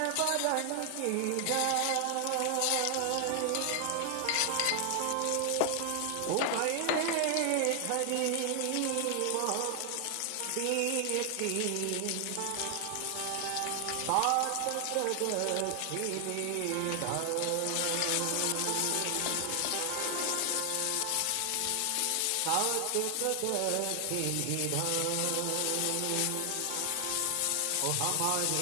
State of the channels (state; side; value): different; both; correlation 0.00